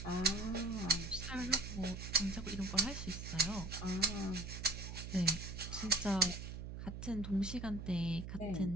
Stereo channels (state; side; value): noise; right; hum, 8 dB below the sound